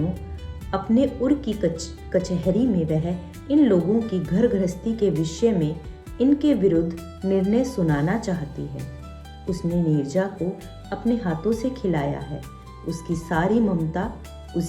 अपने उर की कचहरी में वह इन लोगों की घर गृहस्थी के विषय में इनके विरुद्ध निर्णय सुनाना चाहती है। उसने नीरजा को अपने हाथों से खिलाया है। उसकी सारी ममता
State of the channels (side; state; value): both; identical; correlation 1.00